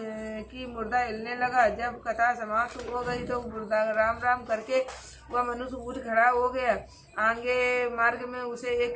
कि मुर्दा हिलने लगा। जब कथा समाप्त हो गई तो मुर्दा राम राम करके वह मनुष्य उठ खड़ा हो गया। आगे मार्ग में उसे एक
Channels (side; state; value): both; identical; correlation 1.00